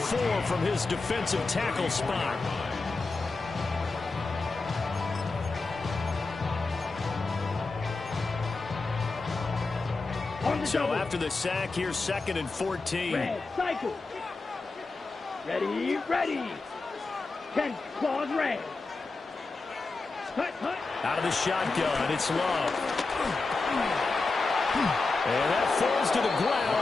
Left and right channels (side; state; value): right; quieter; 3.7 dB